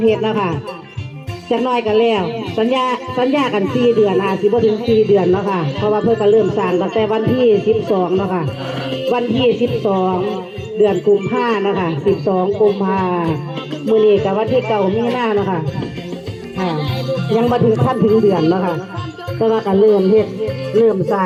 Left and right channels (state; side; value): identical; both; correlation 1.00